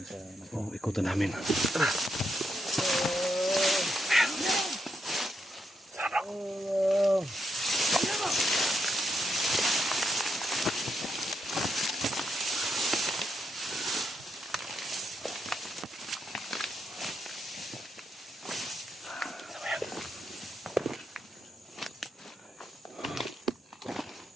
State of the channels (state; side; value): normal; both; correlation 0.81